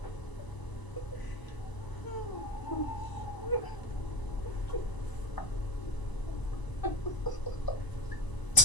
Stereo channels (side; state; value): right; late; 1.0 ms